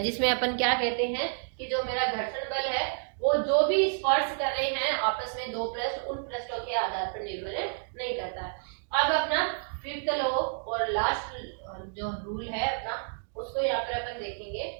जिसमें अपन क्या कहते हैं कि जो मेरा घर्षण बल है वो जो भी स्पर्श कर रहे हैं आपस में दो पृष्ठ, उन पृष्ठों के आधार पर निर्भर नहीं करता है। अब अपना फिफ्थ लॉ और लास्ट जो रूल है अपना, उसको यहाँ पर अपन देखेंगे,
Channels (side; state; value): left; silent; digital silence